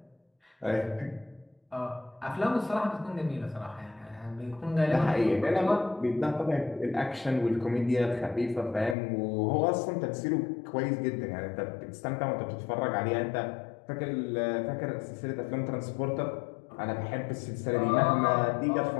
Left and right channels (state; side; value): drops out; right; at 9.0 s